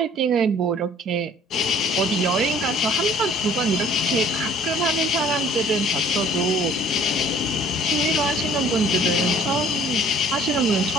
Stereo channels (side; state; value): both; normal; correlation 0.54